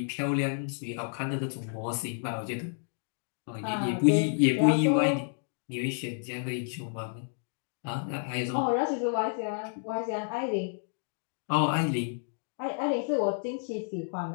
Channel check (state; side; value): silent; right; digital silence